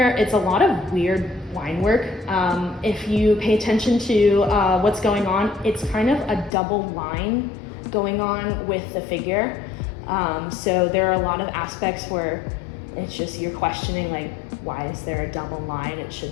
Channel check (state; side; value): drops out; right; at 6.5 s